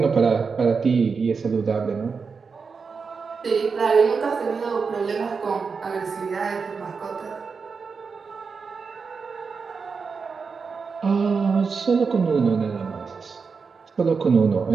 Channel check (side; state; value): left; quieter; 5.2 dB